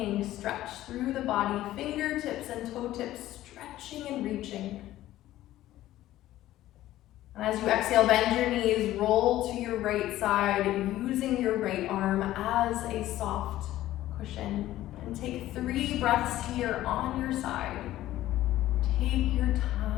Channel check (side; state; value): right; quieter; 14.5 dB